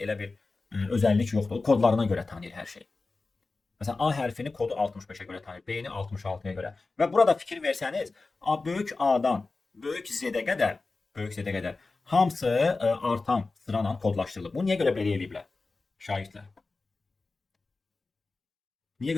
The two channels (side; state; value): right; quieter; 3.7 dB